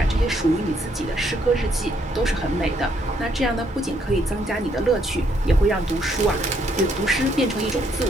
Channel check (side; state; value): both; normal; correlation 0.71